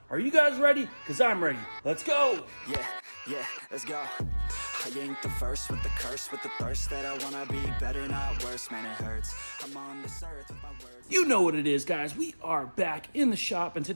Are you guys ready? Because I'm ready. Let's go. Yeah, let's go. I ain't the first with the curse, with the thirst that I wanna be better, not worse. Man, it hurts. I'm on this earth with my words. You know what it is, guys. We are back in the shop, and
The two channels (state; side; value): inverted; both; correlation -1.00